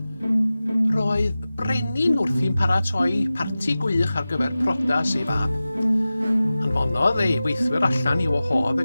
Roedd brenin wrthi'n paratoi parti gwych ar gyfer prodas ei fab. Anfonodd ei weithwyr allan i wahodd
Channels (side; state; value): both; inverted; correlation -0.96